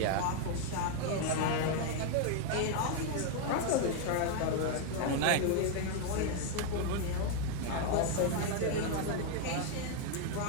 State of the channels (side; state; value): both; different; correlation 0.00